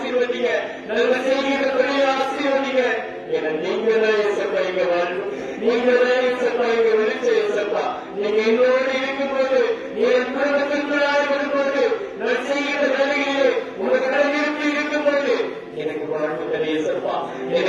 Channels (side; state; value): both; identical; correlation 1.00